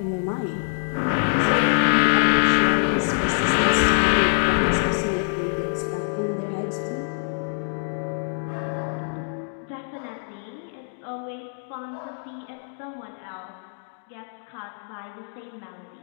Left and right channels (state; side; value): silent; right; digital silence